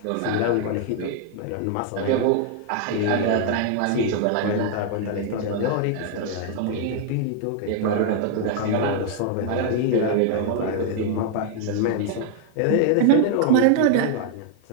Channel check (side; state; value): both; different; correlation 0.00